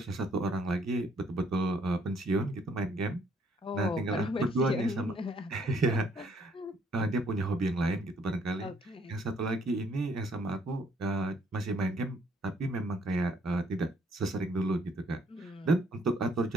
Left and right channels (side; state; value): both; normal; correlation 0.66